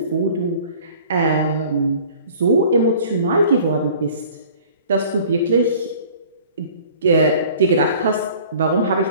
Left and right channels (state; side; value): inverted; both; correlation -0.48